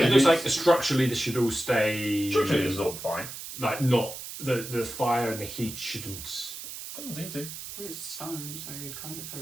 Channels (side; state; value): right; noise; hiss, 10 dB below the sound